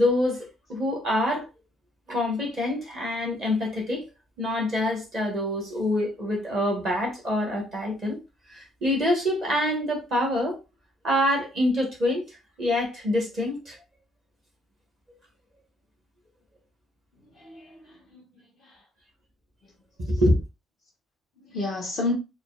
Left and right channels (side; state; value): both; normal; correlation 0.67